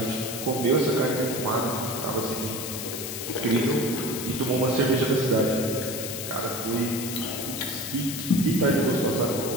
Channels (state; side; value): noise; left; hiss, 6 dB below the sound